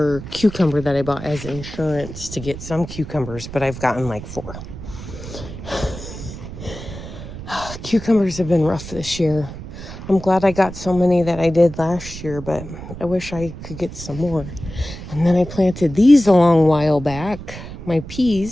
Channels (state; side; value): noise; right; rumble, 11 dB below the sound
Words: cucumber that I bought as insurance to get some cucumbers, but I've gotten like 4. Cucumbers have been rough this year. I'm glad I got so many that I did last year, but I wish I could get some more. And then I planted these a long while back, my